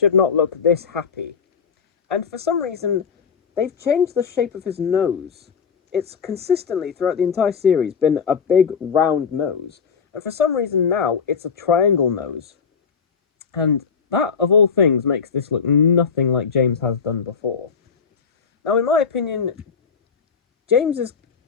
not look this happy. And for some reason, they've changed the shape of his nose. It's consistently, throughout the entire series, been a big, round nose. And for some reason now, it's a triangle nose. And that, of all things, makes this look nothing like James has done before. Now, in my opinion, James is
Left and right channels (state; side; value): quieter; right; 6.1 dB